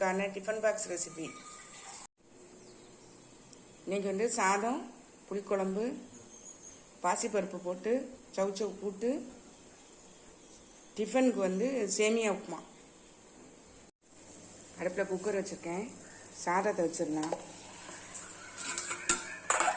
டிஃபன் பாக்ஸ் ரெசிபி. இன்னைக்கு சாதம், புளிக்குழம்பு, பாசிப்பருப்பு போட்டு சவுச்சவு கூட்டு, டிஃபனுக்கு சேமியா உப்புமா. அடுப்பில் குக்கர் வச்சுருக்கேன். சாதத்தை வச்சிடலாம்.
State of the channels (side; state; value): both; identical; correlation 1.00